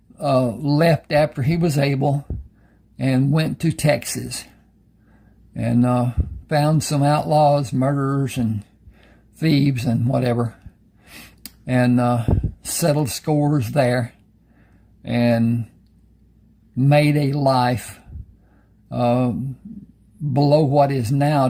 left after he was able and went to Texas, and found some outlaws, murderers and thieves and whatever, and settled scores there, and made a life below what is now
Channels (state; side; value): identical; both; correlation 1.00